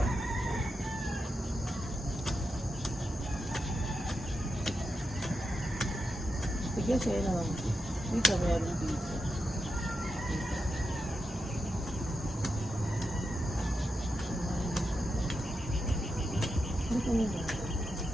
Sige, sa'yo naman. Dito, meron dito.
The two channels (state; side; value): normal; both; correlation 0.87